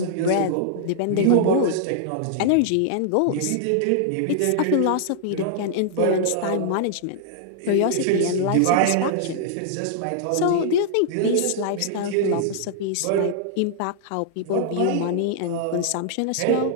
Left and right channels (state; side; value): different; both; correlation -0.01